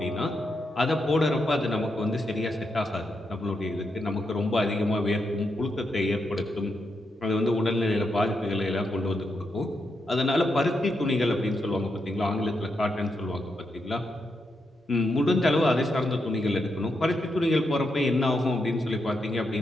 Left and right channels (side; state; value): both; normal; correlation 0.83